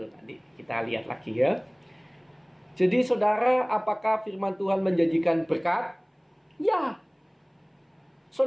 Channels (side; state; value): both; identical; correlation 1.00